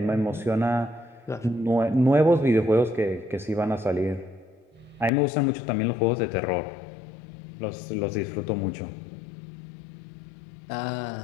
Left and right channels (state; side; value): drops out; right; at 5.1 s